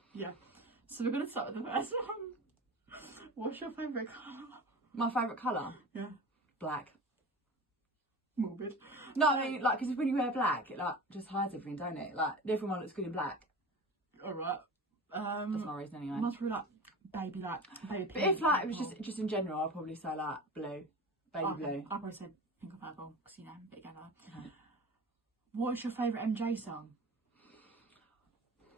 Yeah. So we're gonna start with the first one. What's your favourite colour? My favourite colour? Yeah. Black. Morbid. No, I mean, like, because when you wear black, it, like, just hides everything, don't it? Like, everyone looks good in black. Alright. That's my reason anyway. Must be like, baby pink. But if, like, it was just in general, I'd probably say, like, blue. Baby blue. I'd probably say pink or purple, because, you know, bit together. Okay. What's your favourite MJ song?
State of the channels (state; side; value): normal; both; correlation 0.34